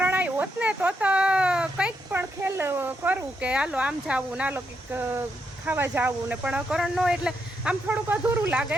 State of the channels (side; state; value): both; normal; correlation 0.81